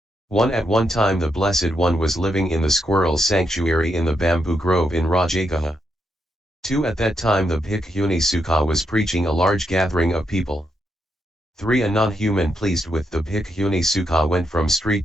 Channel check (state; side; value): normal; both; correlation 0.81